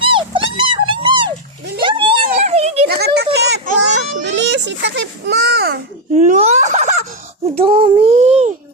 Nakatakip. Bilis, itakip mo. No! Ang dami.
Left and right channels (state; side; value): normal; both; correlation 0.04